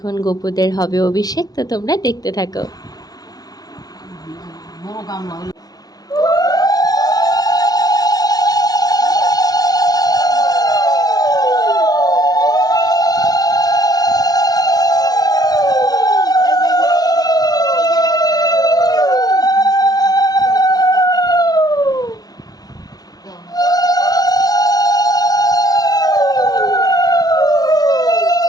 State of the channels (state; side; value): late; right; 0.19 ms